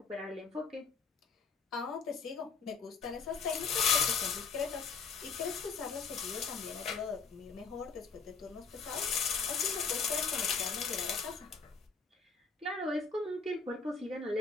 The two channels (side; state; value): right; quieter; 5.2 dB